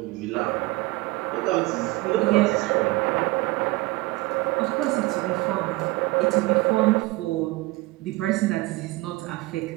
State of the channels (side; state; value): left; quieter; 21.5 dB